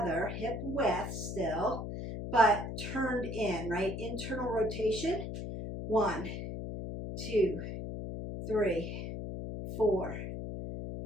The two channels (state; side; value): noise; left; hum, 6 dB below the sound